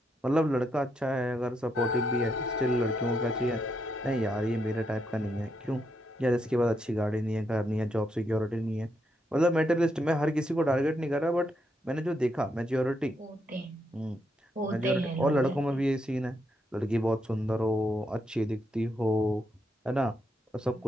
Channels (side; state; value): both; normal; correlation 0.79